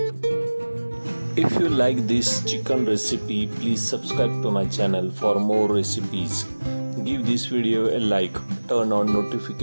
If you like this chicken recipe, please subscribe to my channel for more recipes. Give this video a like, turn on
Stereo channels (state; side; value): inverted; both; correlation -1.00